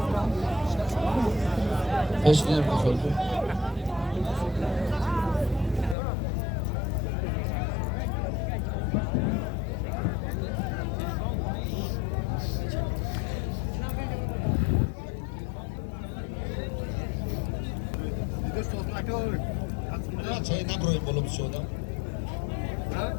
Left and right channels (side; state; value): right; drops out; at 6.0 s